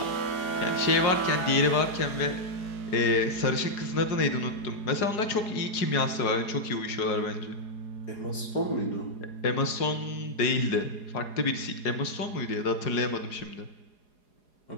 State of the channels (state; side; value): late; right; 4.8 ms